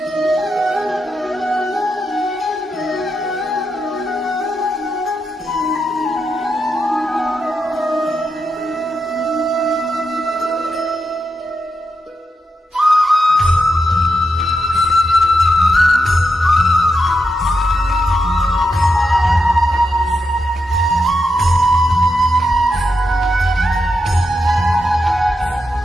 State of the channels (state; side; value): normal; both; correlation 0.85